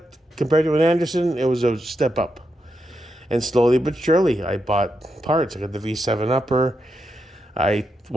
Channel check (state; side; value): normal; both; correlation 0.84